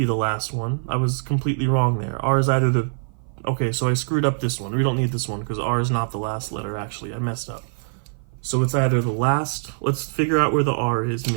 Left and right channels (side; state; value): left; silent; 56 dB below the other